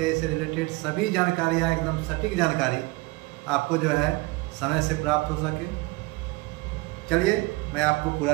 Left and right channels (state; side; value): quieter; left; 23.5 dB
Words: से रिलेटेड सभी जानकारियाँ, एकदम सटीक जानकारी आपको जो है समय से प्राप्त हो सके। चलिए मैं आपको पूरा